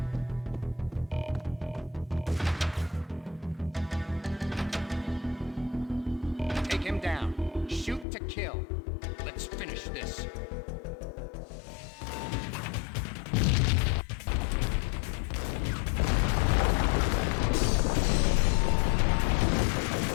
Take him down. Shoot to kill. Let's finish this.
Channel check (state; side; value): drops out; right; at 8.1 s